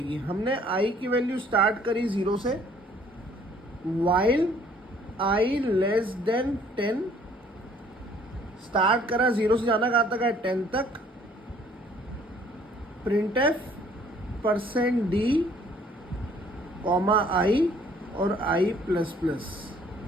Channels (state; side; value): normal; both; correlation 0.58